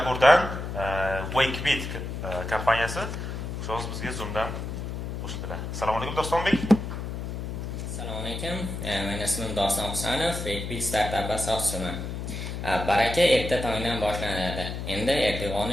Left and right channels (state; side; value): noise; left; hum, 5 dB below the sound